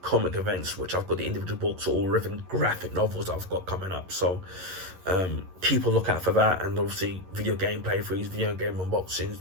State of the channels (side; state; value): left; late; 11 ms